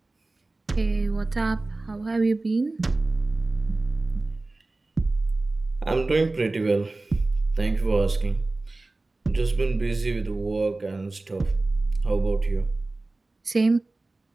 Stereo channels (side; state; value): left; quieter; 3.1 dB